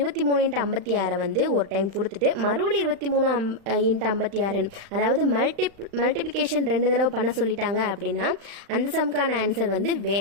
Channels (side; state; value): left; late; 35 ms